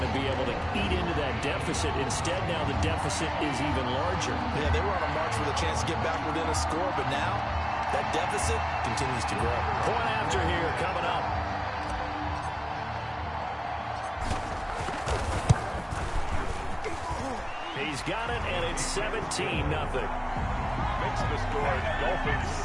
to be able to eat into that deficit. Instead, now the deficit is even larger. Yeah, they were on a march with a chance to get back within a score, but now that deficit continues to grow. Point after here coming up. He's got it, and it's 17-0. Makes the score Dolphins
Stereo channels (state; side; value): identical; both; correlation 1.00